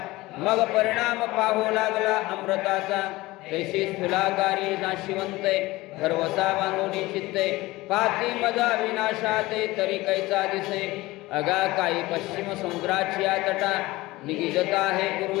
मग परिणाम पाहू लागला अमृताचा तैशी स्थूलाकारी नाशिवंते गर्वसा बांधून चित्ते पाती मजा विनाशाते तरी कैचा दिसे अगा काही पश्चिम समुद्राची तटा निगिजता हे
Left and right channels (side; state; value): right; quieter; 19.6 dB